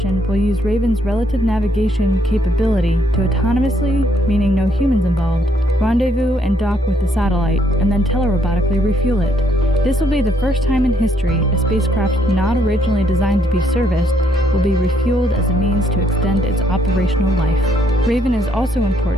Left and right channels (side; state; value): both; normal; correlation 0.70